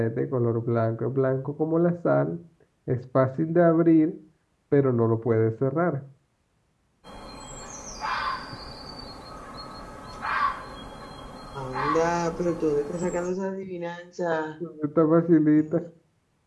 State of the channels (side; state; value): both; identical; correlation 1.00